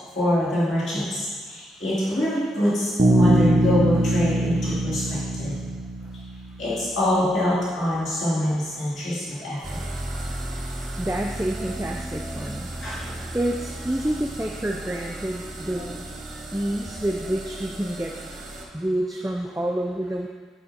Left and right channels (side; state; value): both; normal; correlation 0.83